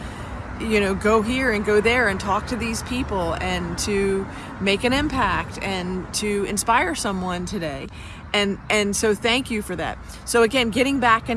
go here and go there and talk to these people and to make an impact and to inspire someone today. And so thank you for that. So again, getting back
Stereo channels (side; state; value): both; identical; correlation 1.00